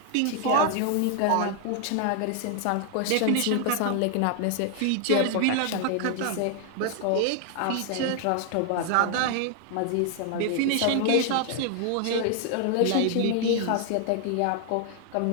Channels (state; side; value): different; both; correlation 0.00